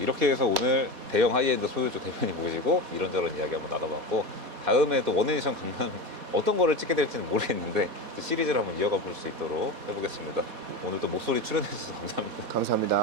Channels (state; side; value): late; left; 4.2 ms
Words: 해서 오늘 대형 하이엔드 소유주 대표님 모시고 이런저런 이야기 한번 나눠봤고 다음에 또 원에디션 강남 어떤 거를 찍게 될지는 모르겠는데 또 시리즈를 한번 이어가 볼 수 있도록 해보겠습니다. 오늘 또 목소리 출연해 주셔서 감사합니다.